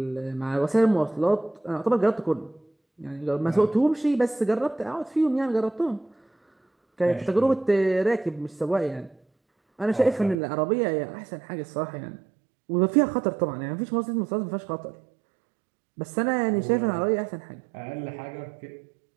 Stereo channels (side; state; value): left; drops out; at 10.4 s